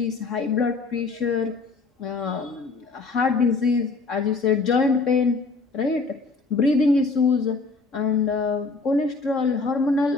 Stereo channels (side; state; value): right; quieter; 4.0 dB